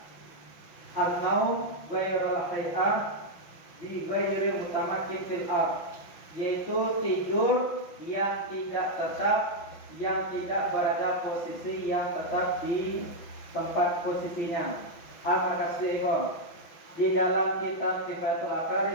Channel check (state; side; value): late; right; 5.9 ms